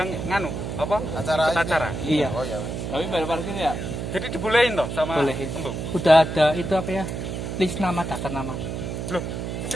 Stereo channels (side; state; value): right; noise; hum, 5 dB below the sound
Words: nganu, apa? Acara. Iya. Oh ya. Tapi bayar parkir ya? Jadi dibolehin toh sama Bolehin. embung? Udah ada itu apa ya? List nama, daftar nama. Loh, itu